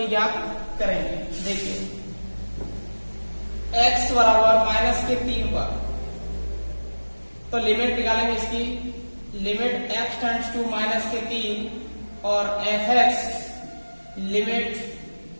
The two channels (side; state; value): both; inverted; correlation -1.00